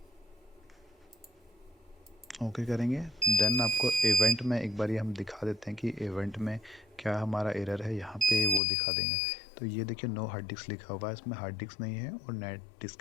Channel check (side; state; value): right; drops out; at 8.6 s